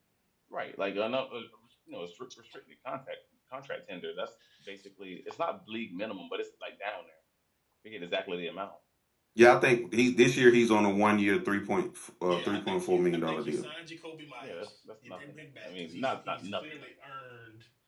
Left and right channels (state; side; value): identical; both; correlation 1.00